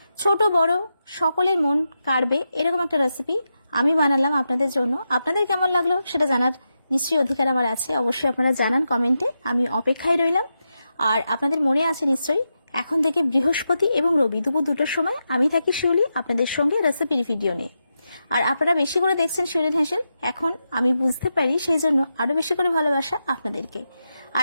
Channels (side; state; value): both; inverted; correlation -0.88